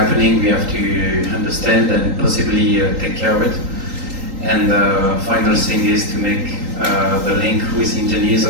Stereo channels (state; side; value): late; left; 3.8 ms